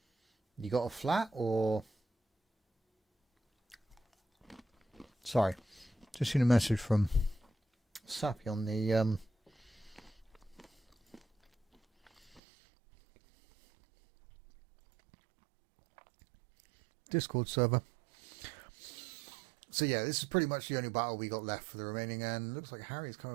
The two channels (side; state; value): left; drops out; at 12.4 s